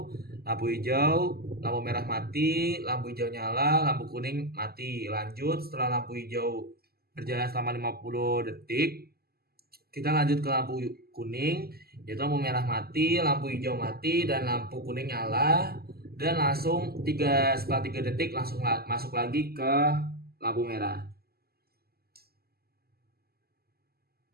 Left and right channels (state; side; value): late; left; 0.45 ms